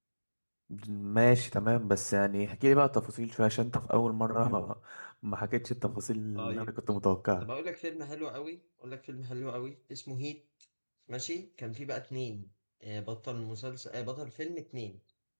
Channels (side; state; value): both; inverted; correlation -1.00